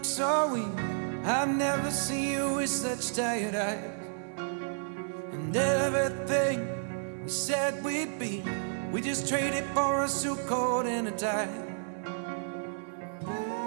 so weak. I've never seen you with such tired eyes. And everything we said we'd be, we just traded for a suit coat and a tie.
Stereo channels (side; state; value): left; silent; 57 dB below the other